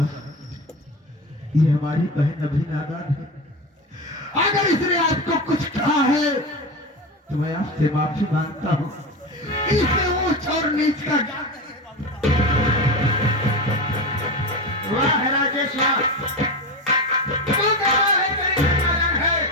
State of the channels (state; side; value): normal; both; correlation 0.23